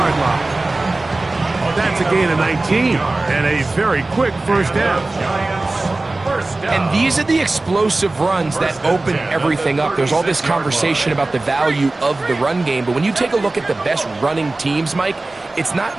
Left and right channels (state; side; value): quieter; left; 3.1 dB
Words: line. That's a gain of 19 and a very quick first down. And these are the explosive runs that open everything up. There's all this conversation about the value of the run game, but when you take a look at the best running teams, Mike, it's not